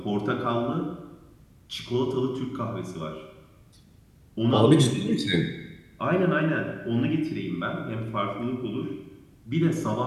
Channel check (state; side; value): identical; both; correlation 1.00